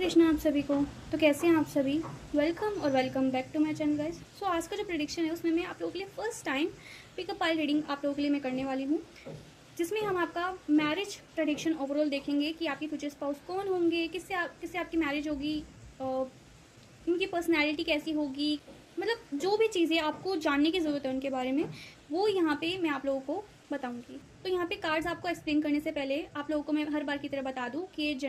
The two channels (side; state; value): both; identical; correlation 1.00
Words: आप सभी को। तो कैसे हैं आप सभी? वेलकम और welcome back to my channel guys. So आज का जो प्रेडिक्शन है उसमें मैं आप लोगों के लिए first time pickup pile reading आप लोगों के लिए मैं करने वाली हूँ, जिसमें हम आपका मैरिज प्रेडिक्शन ओवरऑल देखेंगे कि आपके फ्यूचर स्पाउस कौन होंगे, किससे आपकी मैरिज होगी, उनकी पर्सनैलिटी कैसी होगी, मतलब जो भी चीज़ें आपको जानने की ज़रूरत है उनके बारे में, वो यहाँ पे मैं आप लोगों को बताऊंगी। तो यहाँ पे कार्ड्स आपको एक्सप्लेन करने से पहले आप लोगों को मैं हर बार की तरह बता दूं कि ये